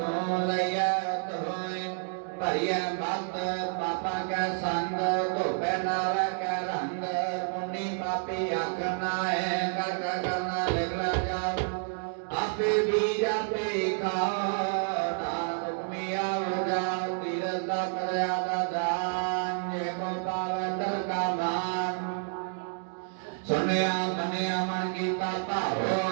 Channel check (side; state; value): left; silent; 58 dB below the other